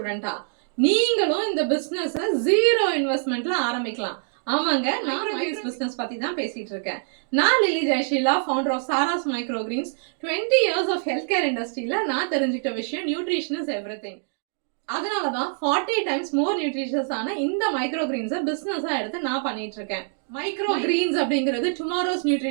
நீங்களும் இந்த பிசினஸ் ஜீரோ இன்வெஸ்ட்மெண்ட்ல ஆரம்பிக்கலாம். ஆமாங்க, நான் மைக்ரோ பிசினஸ் பத்தி தான் பேசிட்டு இருக்கேன். நான் Lily Jayasheela, founder of Sara's micro greens. 20 years of health care இண்டஸ்ட்ரியில நான் தெரிஞ்சுக்கிட்ட விஷயம் நியூட்ரிஷன் இஸ் எவ்ரிதிங். அதனாலதான் 40 டைம்ஸ் மோர் நியூட்ரிஷியஸ் ஆன இந்த மைக்ரோ கிரீன்ஸை பிசினஸா எடுத்து நான் பண்ணிட்டு இருக்கேன். மைக்ரோ கிரீன்ஸ் அப்படிங்கிறது டுமாரோஸ்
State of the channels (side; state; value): left; silent; digital silence